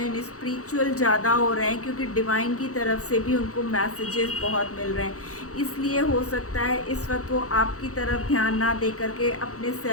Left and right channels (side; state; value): right; late; 0.65 ms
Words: स्पिरिचुअल ज़्यादा हो रहे हैं, क्योंकि डिवाइन की तरफ से भी उनको मैसेजेस बहुत मिल रहे हैं। इसलिए हो सकता है इस वक्त वो आपकी तरफ ध्यान ना दे करके अपने